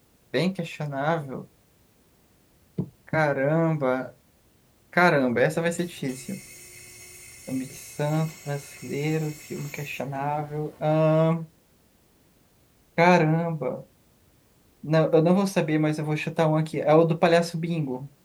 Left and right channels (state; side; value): identical; both; correlation 1.00